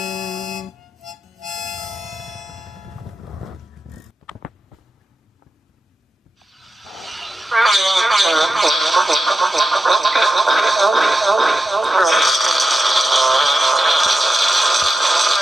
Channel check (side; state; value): both; normal; correlation 0.89